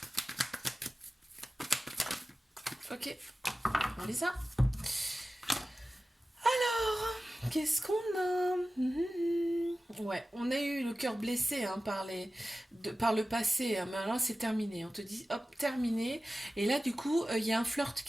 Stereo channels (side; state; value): both; normal; correlation 0.95